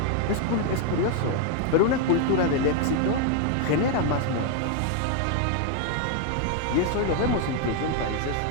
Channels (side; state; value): both; different; correlation 0.01